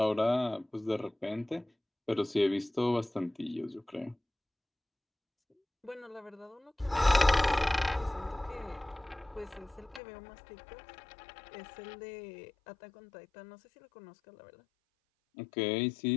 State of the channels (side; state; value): right; drops out; at 10.0 s